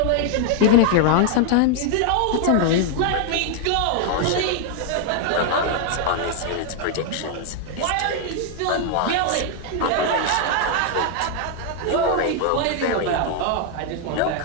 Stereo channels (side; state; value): both; different; correlation 0.00